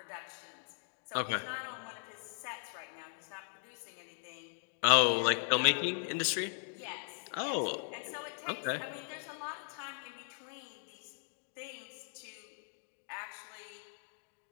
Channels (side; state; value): right; silent; 52 dB below the other